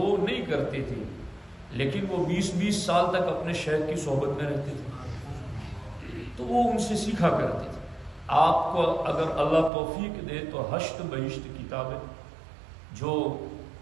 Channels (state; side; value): drops out; left; at 9.7 s